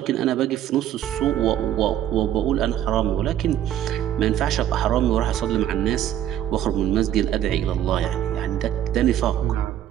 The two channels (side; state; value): left; quieter; 11.3 dB